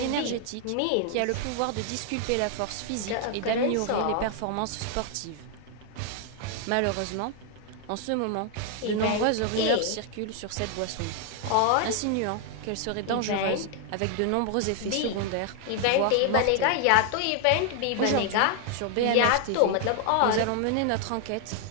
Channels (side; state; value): both; different; correlation 0.00